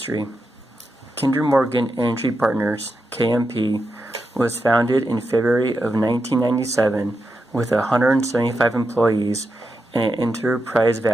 Kinder Morgan Energy Partners, KMP, was founded in February of 1997 with 175 employees and an enterprise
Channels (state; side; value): normal; both; correlation 0.87